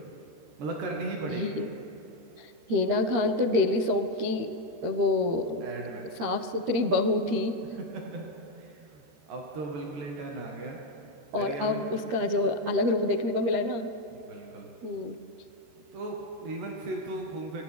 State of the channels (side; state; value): left; late; 13 ms